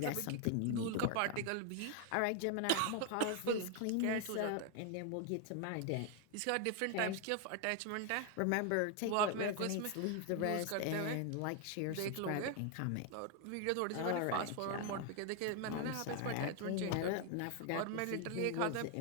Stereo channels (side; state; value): both; different; correlation 0.01